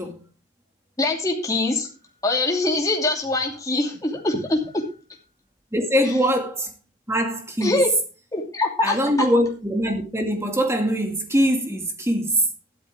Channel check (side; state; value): both; normal; correlation 0.50